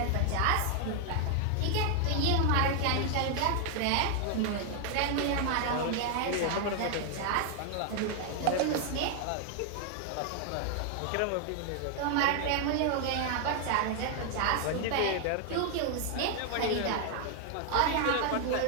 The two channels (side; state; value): both; different; correlation 0.00